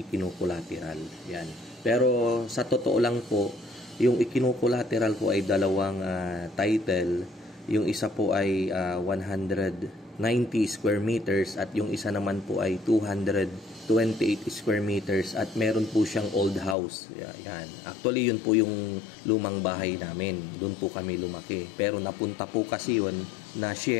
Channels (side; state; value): right; drops out; at 16.8 s